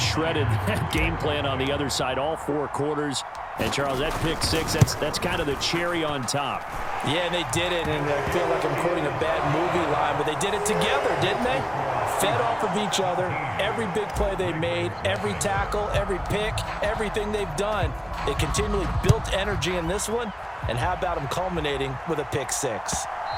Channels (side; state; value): both; identical; correlation 1.00